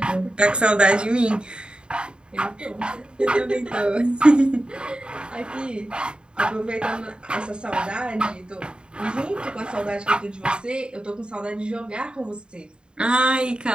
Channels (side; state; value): left; late; 0.051 ms